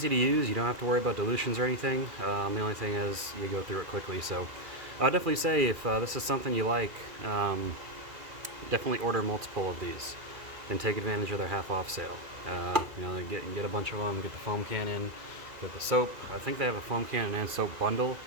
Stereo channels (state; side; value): late; left; 2.4 ms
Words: to use. You don't have to worry about dilutions or anything. The only thing is you go through it quickly. So I'd definitely say if this is something you like, definitely order multiple of these and take advantage of their half off sale. You know, get a bunch of them, get the foam cannon, get the soap. I think they have a foam cannon and soap bundle.